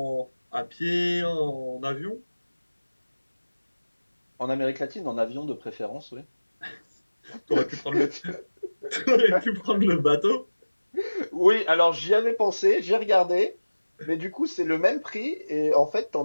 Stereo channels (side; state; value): both; inverted; correlation -1.00